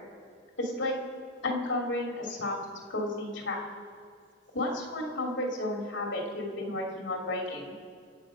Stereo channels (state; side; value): normal; both; correlation 0.06